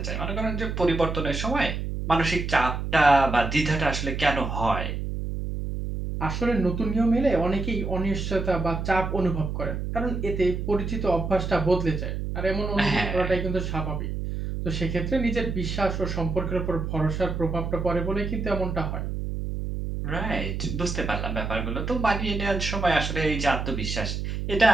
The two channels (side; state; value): right; noise; hum, 3 dB below the sound